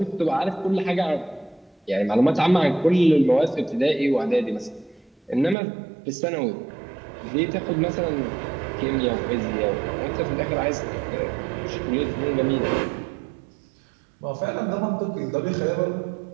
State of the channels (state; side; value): drops out; left; at 5.6 s